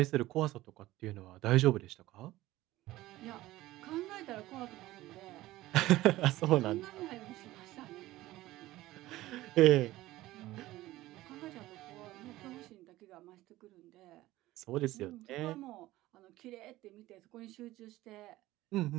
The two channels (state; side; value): quieter; left; 16.9 dB